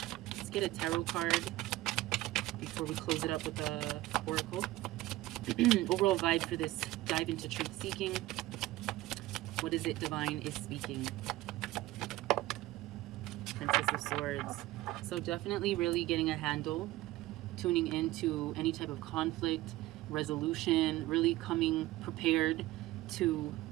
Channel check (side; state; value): left; quieter; 17.2 dB